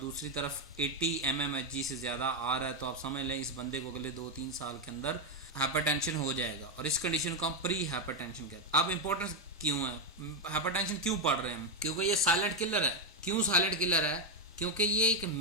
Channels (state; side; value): normal; both; correlation 0.06